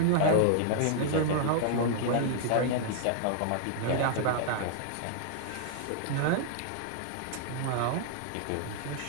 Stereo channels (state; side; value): different; both; correlation 0.00